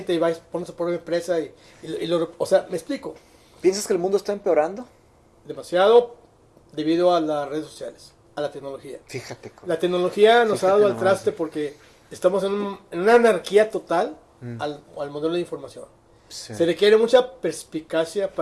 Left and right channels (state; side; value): identical; both; correlation 1.00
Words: y va y pone su propia empresa o sea, me explico. ¿Piensas que el mundo está empeorando? Demasiado debido a las redes sociales, a la tecnología. Fíjate. La tecnología nos ha dado al nomás. traste porque estamos en una anarquía total al modelo de información. Sí. Se requiere mucha perspicacia